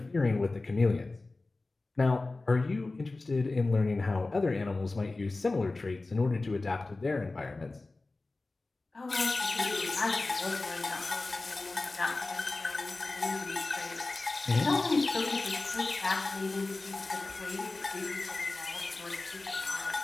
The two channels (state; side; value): quieter; right; 3.3 dB